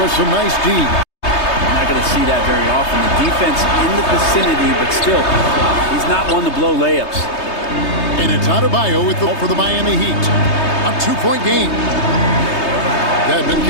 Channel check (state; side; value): late; right; 3.3 ms